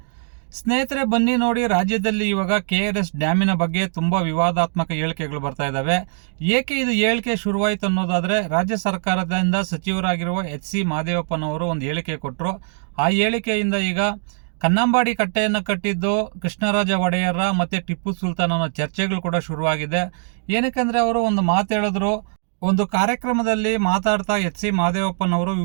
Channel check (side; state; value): left; silent; 60 dB below the other